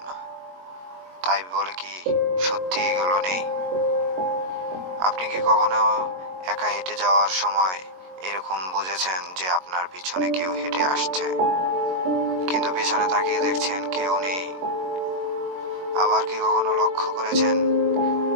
না, তাই বলে কি সত্যি এগুলো নেই? আপনি কি কখনো একা হেঁটে যাওয়ার সময় এরকম বুঝেছেন যে আপনার পিছনে কেউ হেঁটে আসছে, কিন্তু পিছনে তাকিয়ে দেখছেন কেউ নেই? আবার কি কখনো লক্ষ্য করেছেন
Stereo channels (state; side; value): late; left; 22 ms